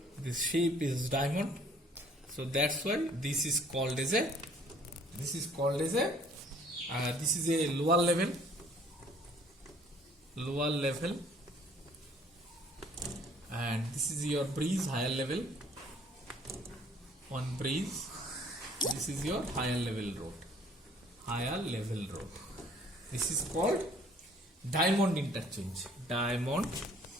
This shape is diamond, so that's why this is called as a this is a lower level, and this is your breeze, higher level, one breeze, This is your higher level road. Higher level road. This is called diamond interchange. Diamond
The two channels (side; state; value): both; normal; correlation 0.57